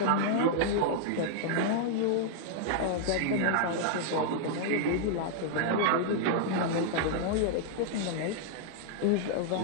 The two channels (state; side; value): different; both; correlation -0.01